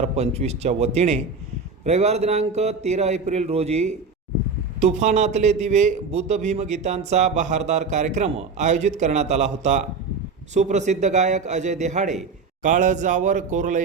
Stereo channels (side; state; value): left; quieter; 4.7 dB